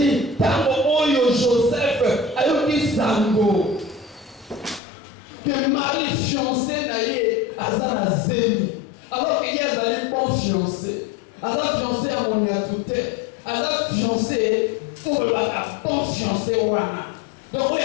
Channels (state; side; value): drops out; right; at 4.8 s